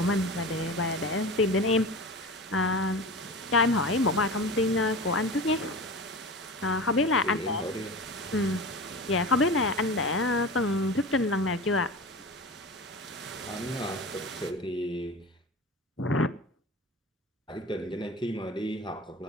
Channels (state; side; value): normal; both; correlation 0.31